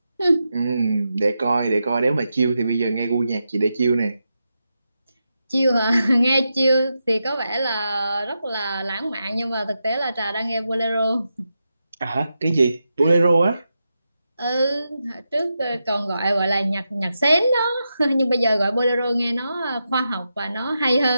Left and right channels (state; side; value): inverted; both; correlation -0.87